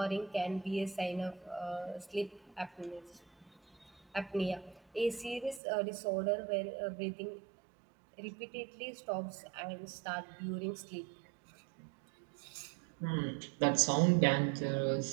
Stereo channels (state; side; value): drops out; left; at 5.6 s